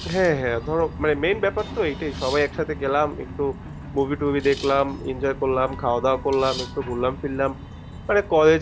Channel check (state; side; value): identical; both; correlation 1.00